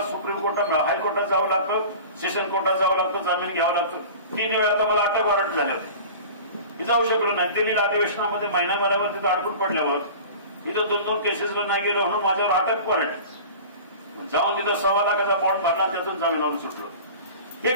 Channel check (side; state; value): both; inverted; correlation -0.38